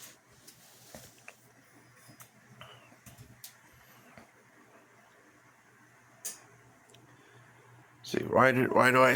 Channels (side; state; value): both; identical; correlation 1.00